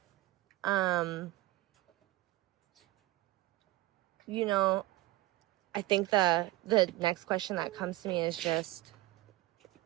I think the next question that comes to me is just,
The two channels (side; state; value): left; quieter; 18.0 dB